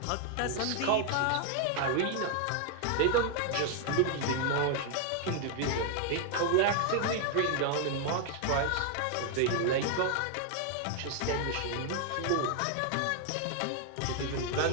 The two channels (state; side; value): different; both; correlation 0.00